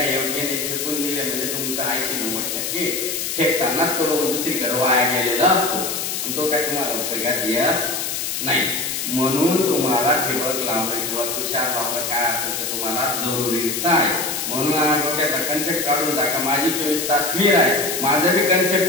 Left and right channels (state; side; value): noise; left; hiss, 2 dB below the sound